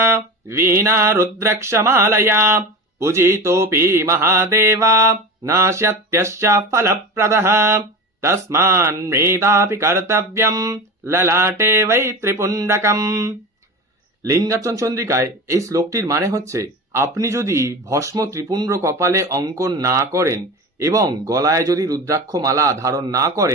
वीणा रुद्रक्षमालया पूजितोऽपि महादेवा नाश्यत्यश्च फलप्रदः तस्मान्मेधापि कर्तव्यं ललाटे वै त्रिपुण्डकम्। লিঙ্গার্চন চন্দ্রিকায় এই শ্লোকটির মানে হচ্ছে, আপনি যদি ভস্ম ত্রিপুণ্ড কপালে অঙ্কন না করেন এবং গলায় যদি রুদ্রাক্ষ মালা ধারণ না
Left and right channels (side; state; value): both; normal; correlation 0.29